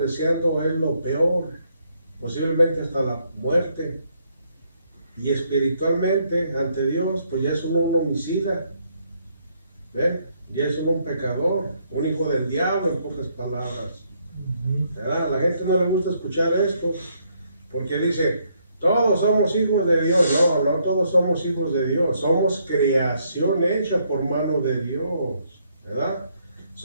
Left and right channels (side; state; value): both; inverted; correlation -0.72